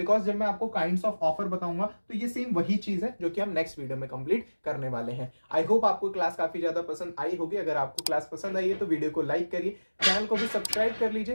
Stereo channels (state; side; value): inverted; both; correlation -1.00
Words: जब मैं आपको काइंड्स ऑफ ऑफर बताऊंगा तो ये सेम वही चीज है जो कि हम नेक्स्ट वीडियो में कंप्लीट करने वाले हैं। आई होप आपको क्लास काफी ज्यादा पसंद आई होगी। अगर आपको क्लास पसंद आई है तो वीडियो को लाइक करिए, चैनल को भी सब्सक्राइब कर